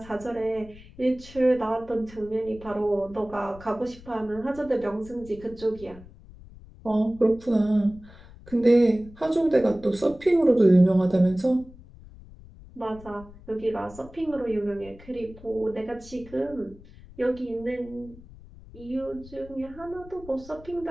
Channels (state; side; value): noise; left; rumble, 20 dB below the sound